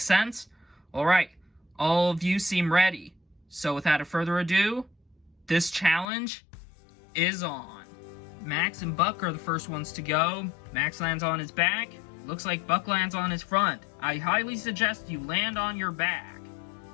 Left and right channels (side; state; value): right; drops out; at 6.1 s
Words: Alright, all of you seem ready. So without further ado, This challenge is on. Max and Buck are the first ones to go. Max lands on his back. Looks like Buck lands on his front. I highly suggest you land on your back.